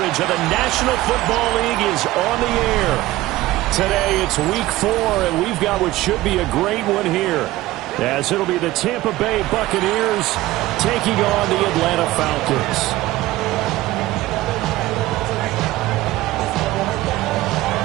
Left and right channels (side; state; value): left; quieter; 17.1 dB